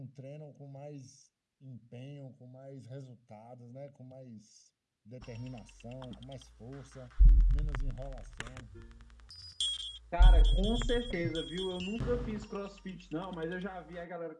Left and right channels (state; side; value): identical; both; correlation 1.00